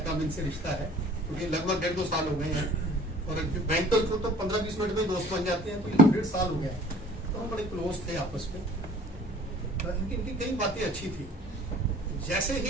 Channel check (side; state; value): both; normal; correlation 0.48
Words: कम इनसे रिश्ता है, क्योंकि लगभग 1.5-2 साल हो गए हैं, और बैंक तो 15-20 मिनट में दोस्त बन जाते हैं, तो 1.5 साल हो गया है, तो हम बड़े क्लोज थे आपस में। इनकी कई बातें अच्छी थी, जैसे